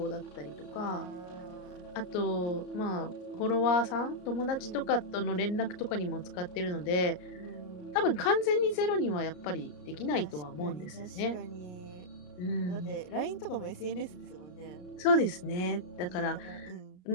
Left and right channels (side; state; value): right; late; 33 ms